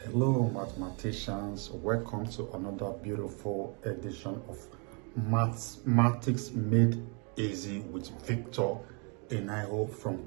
Hello mathematicians, welcome to another beautiful edition of Mathematics Made Easy with Victor Enayo from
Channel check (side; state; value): left; quieter; 35.5 dB